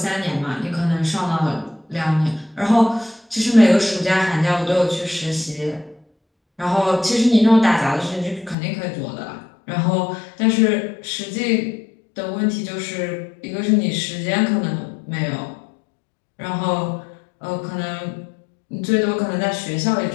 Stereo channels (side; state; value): right; drops out; at 8.6 s